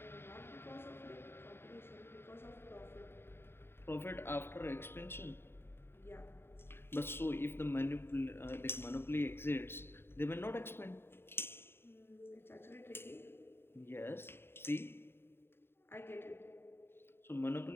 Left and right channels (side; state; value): right; late; 0.11 ms